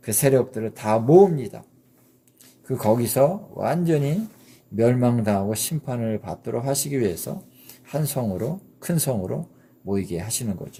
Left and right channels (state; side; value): identical; both; correlation 1.00